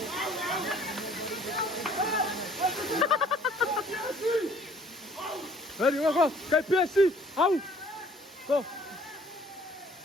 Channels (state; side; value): normal; both; correlation 0.57